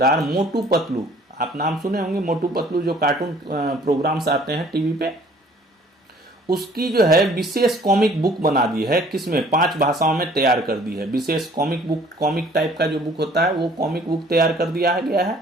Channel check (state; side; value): normal; both; correlation 0.55